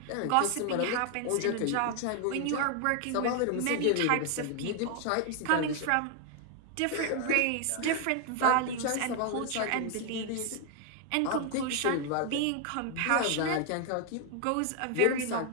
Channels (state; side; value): different; both; correlation 0.00